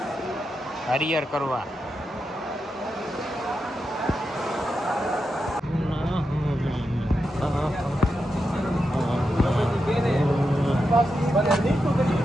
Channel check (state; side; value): normal; both; correlation 0.87